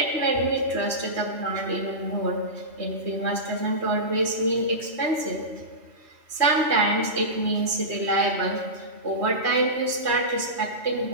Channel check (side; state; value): left; late; 3.1 ms